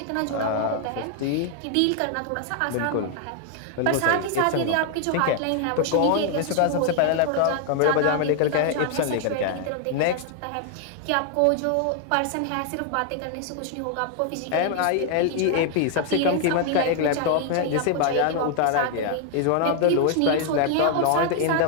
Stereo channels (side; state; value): both; different; correlation 0.00